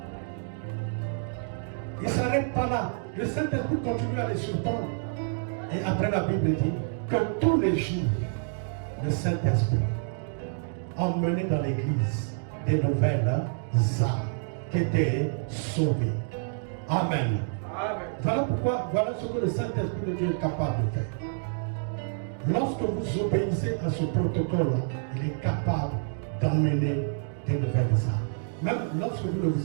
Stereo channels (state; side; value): silent; left; digital silence